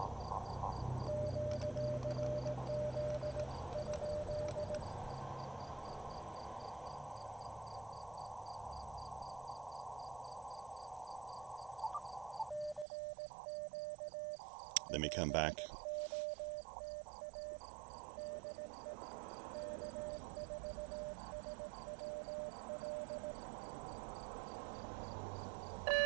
Let me come back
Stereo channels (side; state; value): left; drops out; at 12.9 s